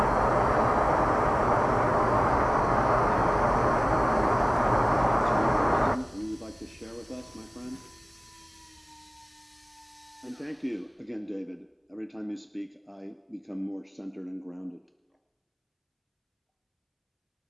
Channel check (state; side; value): identical; both; correlation 1.00